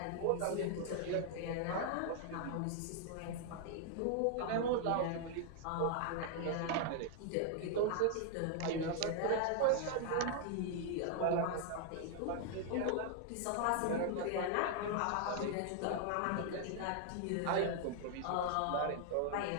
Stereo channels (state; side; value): different; both; correlation 0.00